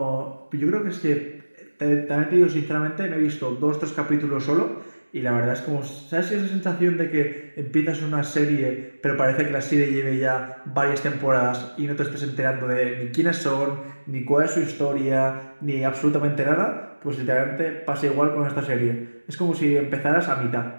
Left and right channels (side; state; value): both; inverted; correlation -1.00